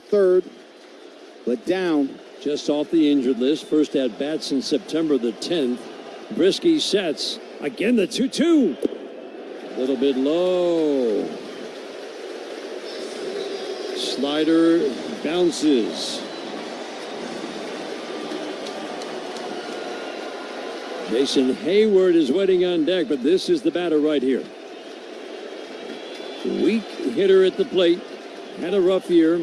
but down. Just off the injured list. First at bat since September the 10th. Brisky sets. Again, the 2-2. A little bit low. Slider bounces. Jason Hayward is waiting on deck, but this is the batter right here. Weak hitter at the plate. Had a rough year.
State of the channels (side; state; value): both; identical; correlation 1.00